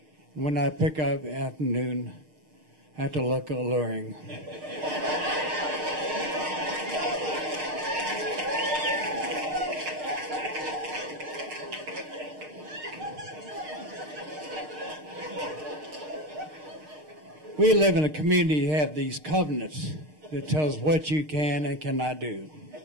When I pick up in the afternoon, I have to look alluring. We live in a community that have these covenants that tells what you can and cannot do.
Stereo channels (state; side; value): late; left; 6.5 ms